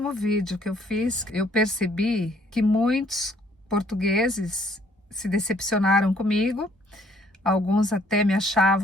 vídeo que eu fiz. Eu percebi que muitos portugueses se decepcionaram comigo, alguns até me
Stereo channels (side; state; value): both; normal; correlation 0.62